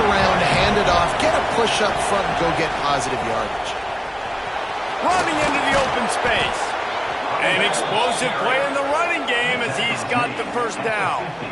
around, hand it off, get a push up front, and go get positive yardage. Running into the open space. An explosive play in the running game as he's got the first down.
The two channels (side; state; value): both; identical; correlation 1.00